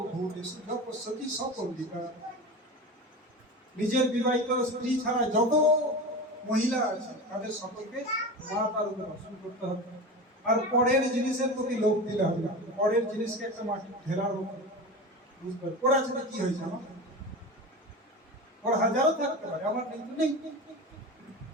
যপস্যতি সপন্ডিকা নিজের বিবাহিত স্ত্রী ছাড়া যত মহিলা আছে তাদের সকলকে মাতার উপর দর্শন করতে হবে আর পরের জিনিসের প্রতি লোভ দিলে হবে না পরের জিনিসকে একটা মাটি ঢেলার মতো বুঝতে পারে ওর আছে কি হয়েছে আমার ওর হাজারও থাকতে পারে আমার কিন্তু নেই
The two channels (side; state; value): both; normal; correlation 0.28